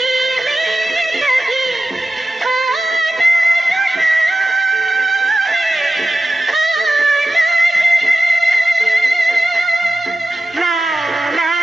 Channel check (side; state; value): both; normal; correlation 0.93